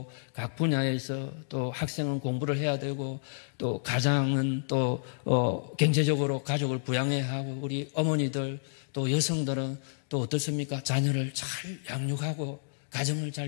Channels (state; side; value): silent; right; digital silence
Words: 각 분야에서 또 학생은 공부를 해야 되고 또 가장은 또 경제적으로 가족을 부양해야 하고 우리 어머니들 또 여성들은 또 어떻습니까? 자녀를 잘 양육하고 가정을